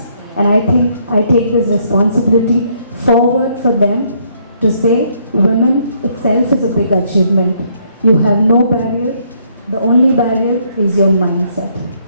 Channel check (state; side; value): inverted; both; correlation -0.69